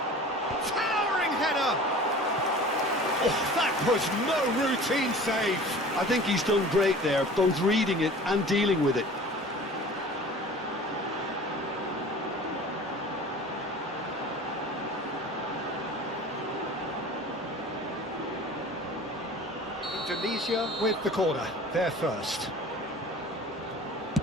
Oh, that was no routine save. I think he's done great there, both reading it and dealing with it. Indonesia with the corner, they're first.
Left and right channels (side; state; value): both; normal; correlation 0.42